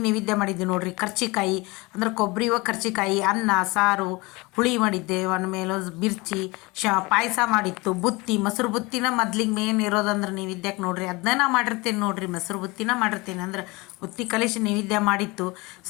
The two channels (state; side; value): quieter; right; 24.2 dB